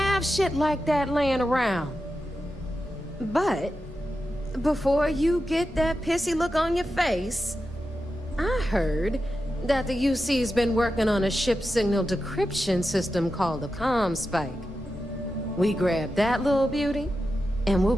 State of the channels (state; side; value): normal; both; correlation 0.90